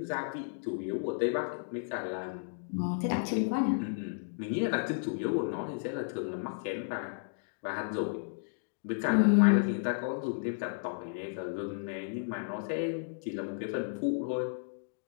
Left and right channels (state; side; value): silent; right; digital silence